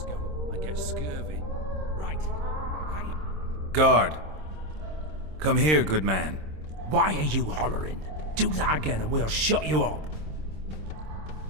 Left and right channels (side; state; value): left; late; 26 ms